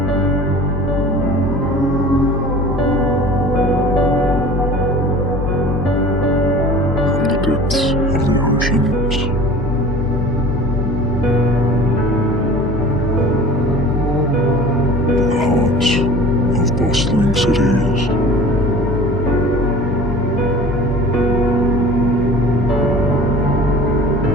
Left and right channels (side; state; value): both; normal; correlation 0.42